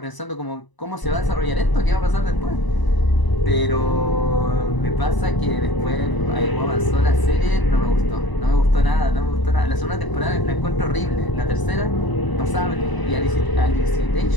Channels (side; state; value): right; late; 1.0 ms